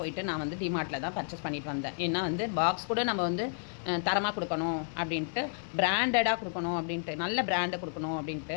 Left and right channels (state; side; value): silent; right; digital silence